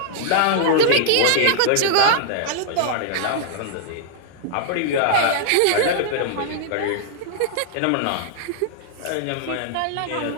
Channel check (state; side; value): different; both; correlation -0.01